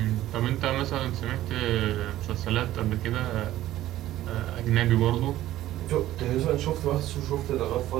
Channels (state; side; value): quieter; left; 14.3 dB